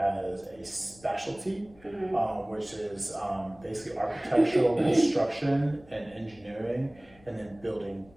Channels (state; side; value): noise; left; rumble, 26 dB below the sound